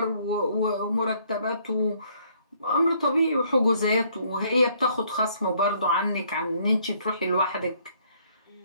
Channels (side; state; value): both; inverted; correlation -0.65